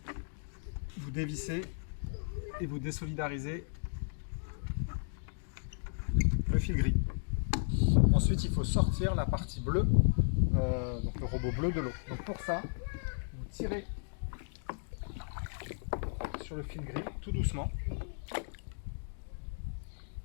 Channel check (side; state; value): right; silent; digital silence